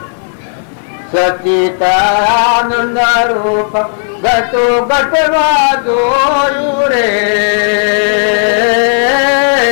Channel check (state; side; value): silent; right; digital silence